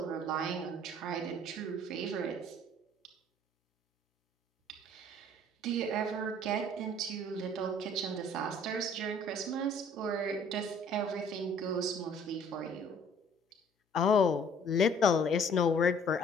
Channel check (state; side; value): normal; both; correlation 0.56